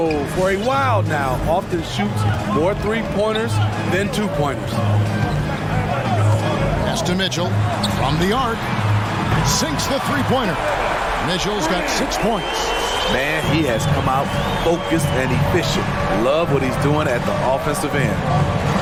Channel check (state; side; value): identical; both; correlation 1.00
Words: for a while now. Often shoots more 3-pointers than 2-pointers. Pass to Mitchell from the arc. Sinks the 3-pointer. Mitchell's got 6 points. Man, he has come out focused and efficient. Love what he's doing at the offensive end.